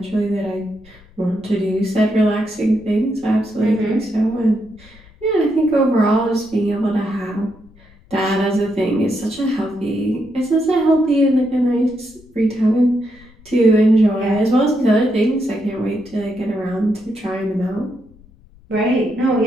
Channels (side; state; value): left; noise; rumble, 26 dB below the sound